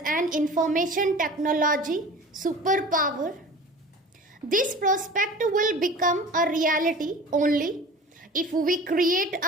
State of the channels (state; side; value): normal; both; correlation 0.39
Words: an information technology superpower. This prospect will become a reality only if we create